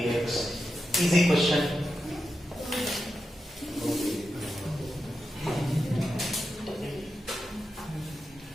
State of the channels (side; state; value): both; normal; correlation 0.89